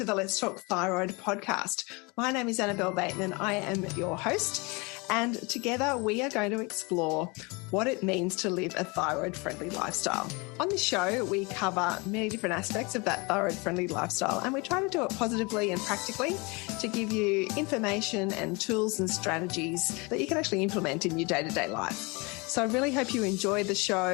the Let's Talk Thyroid podcast. My name is Annabelle Bateman. I am your host, and together we are going to explore what it means to live a thyroid-friendly lifestyle. On this show, we cover many different aspects of that thyroid-friendly lifestyle, and we try to do it positively and practically to give you information and tools and strategies that you can actually implement in your day-to-day life. So I really hope you enjoy the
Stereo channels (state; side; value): quieter; right; 27.8 dB